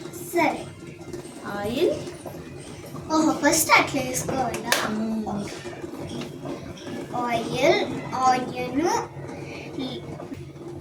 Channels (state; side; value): identical; both; correlation 1.00